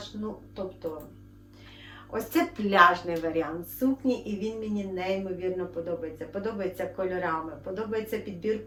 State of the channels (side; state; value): both; identical; correlation 1.00